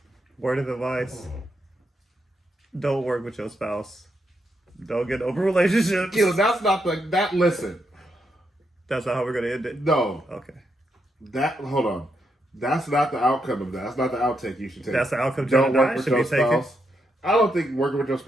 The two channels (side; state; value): both; normal; correlation 0.81